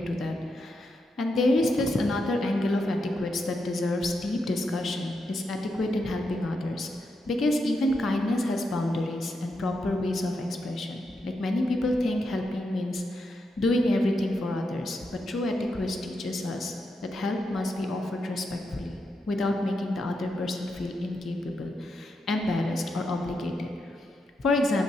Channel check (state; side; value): normal; both; correlation 0.84